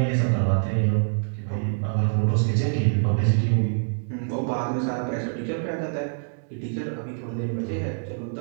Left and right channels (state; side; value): silent; left; digital silence